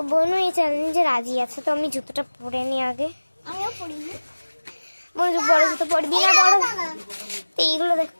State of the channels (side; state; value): both; inverted; correlation -1.00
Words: বনু এই চ্যালেঞ্জে রাজি আছে। তো আমি জুতোটা পরে নি আগে। আমিও পরিনি। বনু বড় জুতো পরবি না? বড় তো এইগুলো